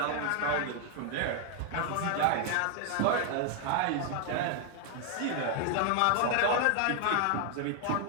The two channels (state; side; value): different; both; correlation 0.00